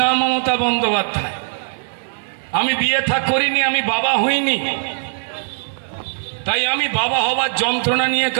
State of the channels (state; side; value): silent; left; 60 dB below the other